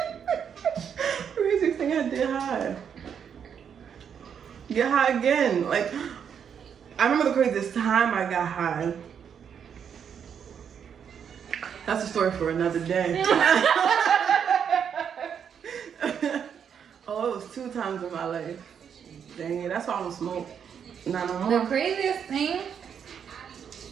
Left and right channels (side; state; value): left; quieter; 7.7 dB